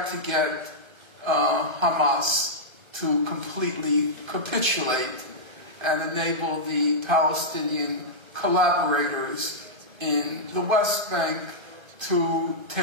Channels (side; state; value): left; late; 1.3 ms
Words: to get Hamas to completely capitulate and enable the Palestinian collaborators in the West Bank to